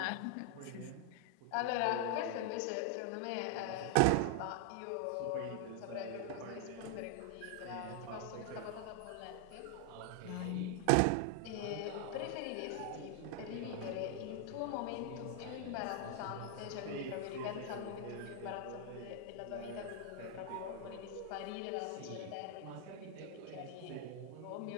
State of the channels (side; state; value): both; different; correlation 0.00